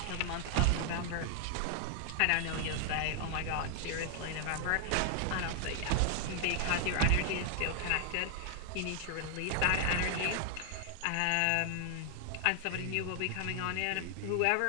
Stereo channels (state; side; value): different; both; correlation 0.00